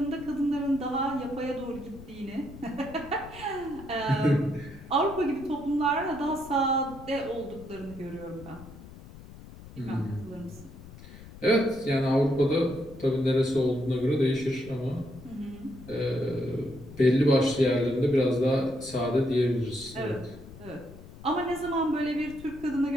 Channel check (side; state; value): left; noise; rumble, 17 dB below the sound